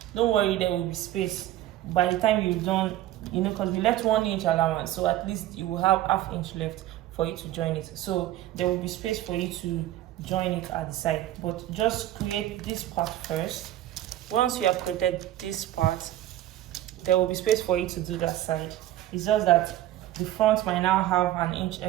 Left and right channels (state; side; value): quieter; left; 13.9 dB